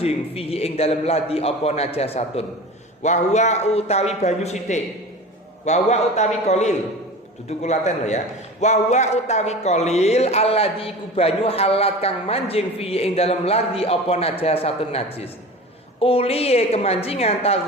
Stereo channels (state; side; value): normal; both; correlation 0.34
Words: fihi ing dalem ladi apa najasatun. Wa huwa utawi banyu sithik. Wa huwa utawi qalil. Dudu kulaten lho ya. Wa huwa utawi qalil alladhi iku banyu halat kang manjing fihi ing dalem ladi apa najasatun najis. Uliye kemancingan